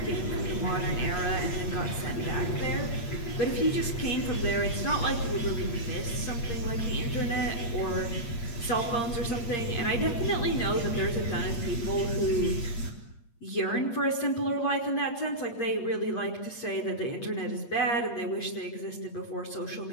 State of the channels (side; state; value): right; late; 8.6 ms